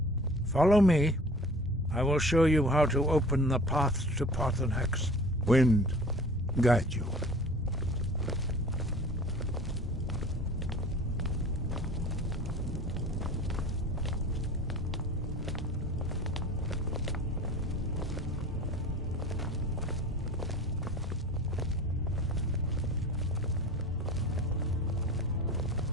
Follow me. I will show you how to open the path to Paarthurnax. Wind, guide you.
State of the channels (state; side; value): normal; both; correlation 0.43